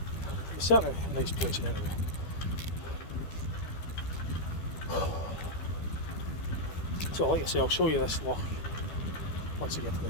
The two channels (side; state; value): right; late; 12 ms